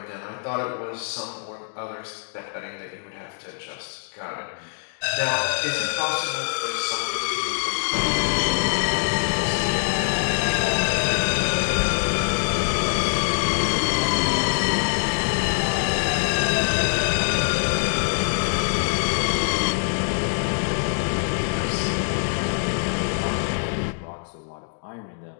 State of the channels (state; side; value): silent; right; digital silence